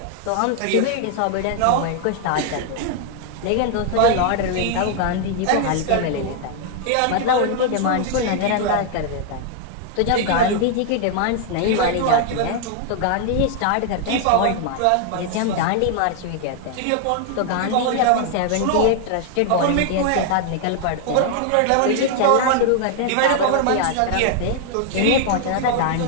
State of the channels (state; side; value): different; both; correlation 0.00